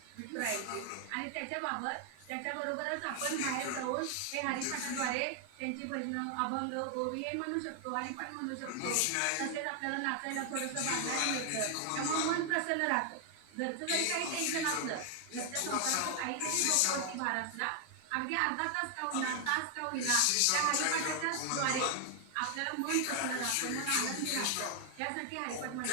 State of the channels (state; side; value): different; both; correlation 0.00